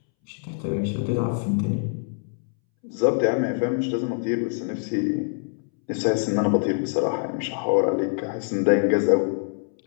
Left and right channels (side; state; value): right; silent; 62 dB below the other